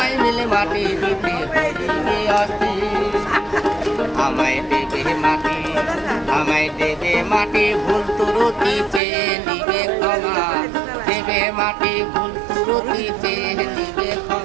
মিলে মাটি দিতে বলিবে অস্থির। আমায় দেবে মাটি, আমায় দেবে মাটি, ভুল ত্রুটি চেয়ে নিবে ক্ষমা, দেবে মাটি ভুল ত্রুটি চেয়ে নিবে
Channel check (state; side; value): drops out; left; at 9.0 s